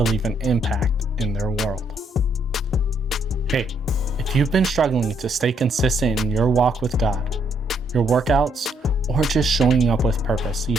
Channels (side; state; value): both; normal; correlation 0.72